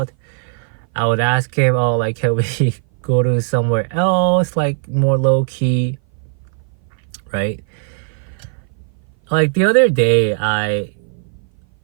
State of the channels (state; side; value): silent; left; 58 dB below the other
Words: I would ask him, can we go to somewhere else, more low-key, right? The other day, I